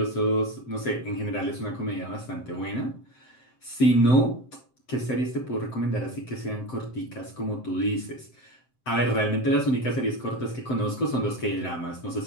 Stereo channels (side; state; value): right; late; 7.7 ms